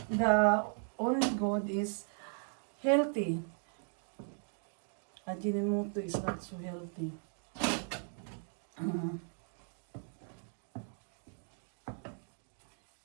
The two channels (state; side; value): silent; left; 53 dB below the other